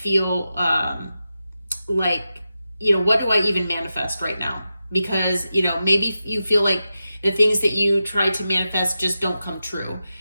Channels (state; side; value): inverted; both; correlation -0.91